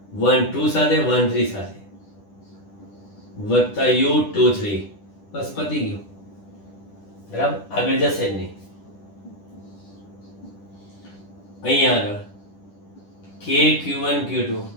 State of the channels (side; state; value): right; late; 10 ms